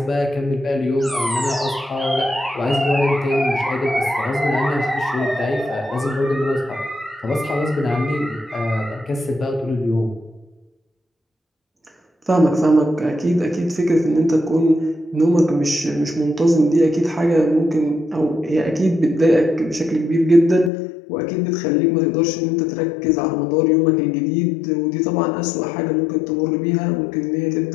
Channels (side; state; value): right; drops out; at 20.7 s